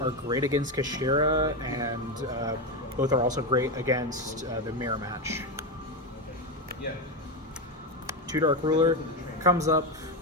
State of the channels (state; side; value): normal; both; correlation 0.12